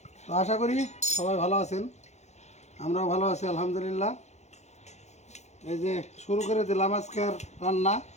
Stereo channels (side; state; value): right; late; 0.33 ms